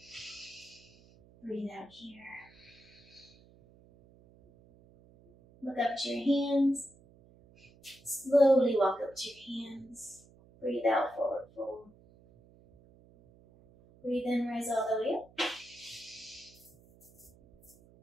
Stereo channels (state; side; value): noise; right; hum, 26 dB below the sound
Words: Breathe out here. Look up to your hands. Slowly walk up to your hands. Breathe out, forward fold. Breathe in, rise all the way up.